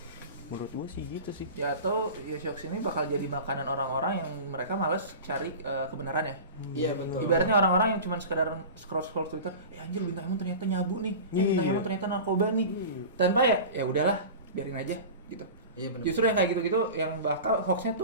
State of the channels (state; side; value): inverted; both; correlation -0.33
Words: Menurut gua sih gitu sih. Ya atau ya hoax ini bakal jadi makanan orang-orang yang mereka malas cari kebenaran ya. Iya betul. Ibaratnya orang-orang yang cuma sekedar scroll Twitter, anjir bintang Emon ternyata nyabu nih. Bintang Emon ternyata narkoba nih. Tanpa ya udahlah, biarin aja gitu. Iya benar. Justru yang kayak gitu-gitu yang bakal hoaxnya